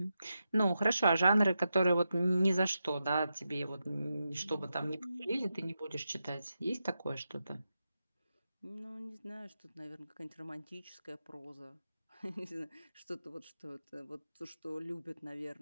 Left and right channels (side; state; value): both; inverted; correlation -0.88